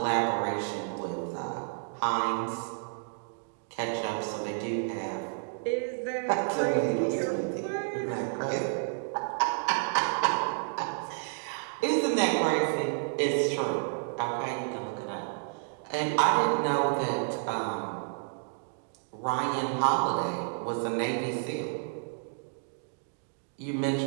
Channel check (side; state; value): left; silent; digital silence